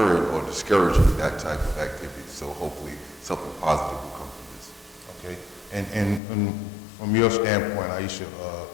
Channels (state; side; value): drops out; right; at 6.2 s